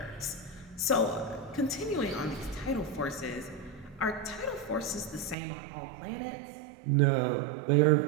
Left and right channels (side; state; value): left; drops out; at 5.4 s